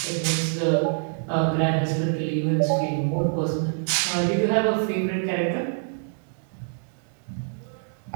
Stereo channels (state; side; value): silent; left; 61 dB below the other